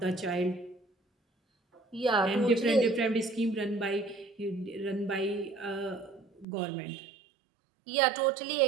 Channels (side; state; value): left; drops out; at 6.5 s